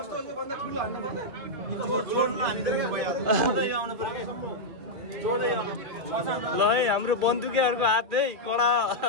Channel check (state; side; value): late; left; 2.5 ms